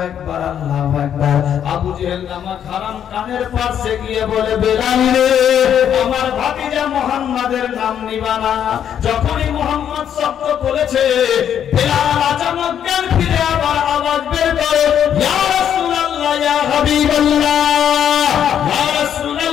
আকবার, আল্লাহু আকবার। আবু জেহেল নামক হারাম কানের পাশে গিয়ে বলে, বেলাল রে, আমার ভাতিজা মুহাম্মাদের নাম নিবা না। যখনই মুহাম্মদ শব্দ বলেছে, বেলাল আচানক জ্ঞান ফিরে আবার আওয়াজ বের করে, ইয়া রাসূলুল্লাহ, ইয়া হাবিবাল্লাহ, ইয়া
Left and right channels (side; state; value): right; quieter; 9.3 dB